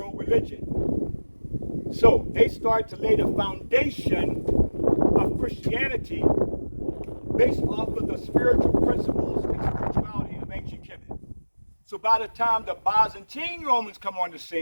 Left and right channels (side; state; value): both; inverted; correlation -1.00